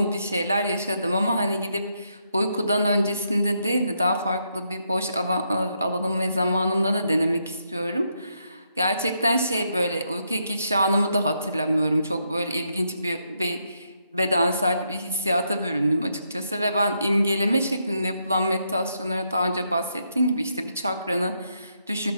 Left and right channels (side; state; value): both; inverted; correlation -0.78